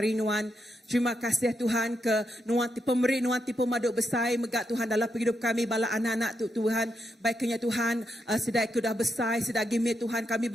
Nuan. Terima kasih Tuhan ke Nuan pemberi Nuan tipu maduk besar megak Tuhan dalam hidup kami bala anak-anak tu Tuhan. Baiknya Tuhan sedai kudah besar sedai gimit Tuhan kami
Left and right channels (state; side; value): normal; both; correlation 0.82